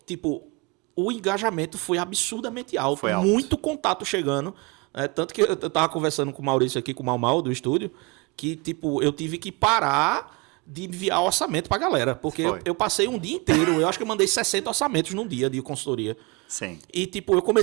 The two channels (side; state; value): left; quieter; 27.7 dB